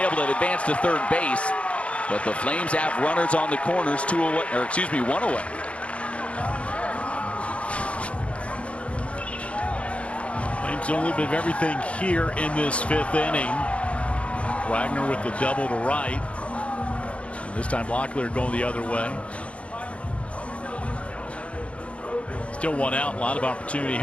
to advance to 3rd base. But the Flames have runners on the corners, one away. Flames doing a little bit of everything here in this 5th inning. Wagner with the double to right. And this time Locklear going the other way. Still one out. A lot of opportunity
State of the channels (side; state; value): right; late; 0.062 ms